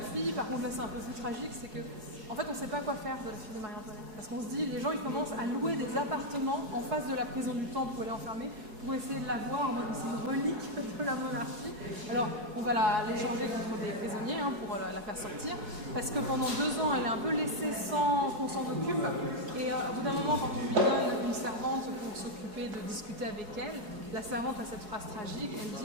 par contre là c'est un peu plus tragique, c'est que en fait on ne sait pas quoi faire de la fille de Marie-Antoinette. Parce qu'on se dit, les gens ils commencent à louer des appartements en face de la prison du Temple où elle est enfermée pour essayer de la voir en mode c'est une relique de la monarchie. Alors on va l'échanger contre des prisonniers pour la faire sortir, parce que pendant 2 ans elle est un peu laissée sans qu'on s'en occupe, et au bout d'un moment quand on lui donne une servante pour s'occuper de discuter avec elle, la servante a cette phrase tragique, elle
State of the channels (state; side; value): late; left; 4.7 ms